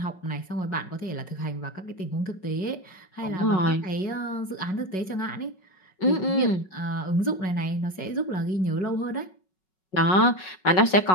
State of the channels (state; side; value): late; right; 5.4 ms